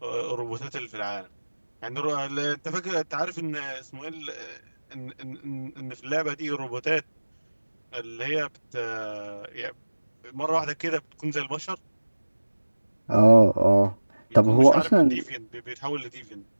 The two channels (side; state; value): both; inverted; correlation -1.00